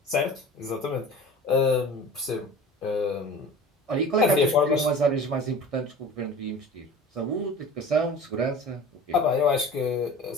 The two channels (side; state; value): both; normal; correlation 0.39